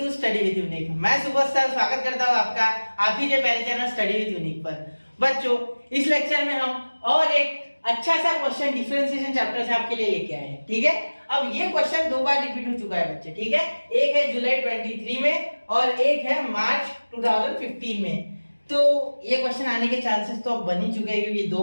study with unique. मैं सुबह सर स्वागत करता हूँ आपका आप ही के पहले चैनल स्टडी विद यूनिक पर। बच्चों इस लेक्चर में हम और एक अच्छा सा क्वेश्चन डिफरेंशिएशन चैप्टर से आपके लिए लेके आए हैं। ठीक है, अब ये क्वेश्चन दो बार रिपीट हो चुका है बच्चे। ठीक है, एक है जुलाई 23 में और एक है मार्च 2015 में। तो ये क्वेश्चन आने के चांसेस तो अब बन ही चुके हैं क्योंकि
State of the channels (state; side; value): inverted; both; correlation -1.00